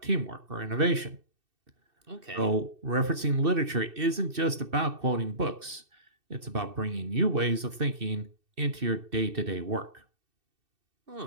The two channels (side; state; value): left; late; 2.7 ms